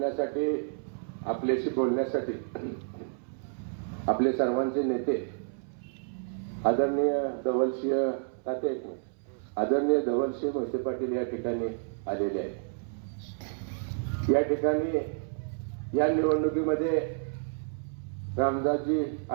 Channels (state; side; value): silent; left; 58 dB below the other